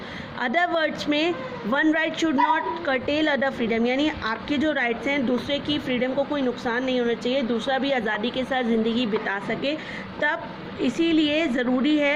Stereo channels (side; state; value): both; identical; correlation 1.00